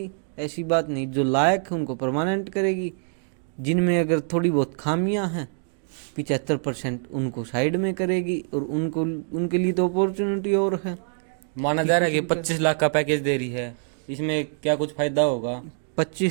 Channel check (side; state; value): left; silent; 62 dB below the other